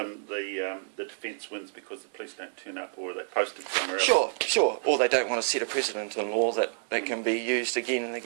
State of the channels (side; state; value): left; silent; digital silence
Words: the defence wins because the police don't turn up or they're posted somewhere else. Sure. Or they don't want to set a precedent in law that can be used again and